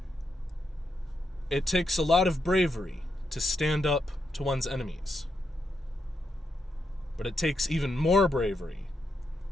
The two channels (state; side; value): normal; both; correlation 0.82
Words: It takes a lot of bravery to stand up to one's enemies, but it takes even more bravery